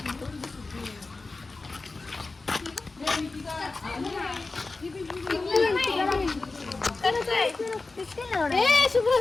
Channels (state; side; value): quieter; right; 3.6 dB